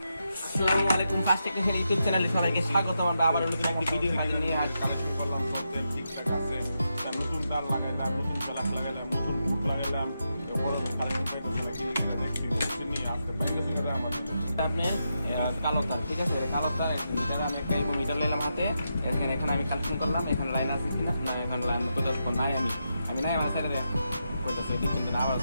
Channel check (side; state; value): both; inverted; correlation -0.85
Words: আসসালামু আলাইকুম, ফার্স্ট টেকনিশিয়ান ইউটিউব চ্যানেলে সবাইকে স্বাগতম। আমরা আবার নতুন একটি ভিডিও হাজির নিয়ে কালেকশন করলাম, সব দেন ঠিকঠাক আছে। তার নতুন তার লাগাইলাম, নতুন প্লাক লাগাইলাম, নতুন বুট লাগাইলাম, এরপর কালেকশন পাইতেছি না, কি লিখে দেখছি বুঝছেন নি। আজকে ব্যাংকের সঙ্গে আমার আপনি কালো তার, ঠিক আছে, কালো তার মিটার আমি একটা মিটার নিলাম হাতে। এখানে আমি কালেকশন করলাম, এখানে লাইন আছে কিনা না, এখানে লাইন কোথাও নাই, আমি নাই আমার সাইডে কইতাছে কিন্তু না, আবার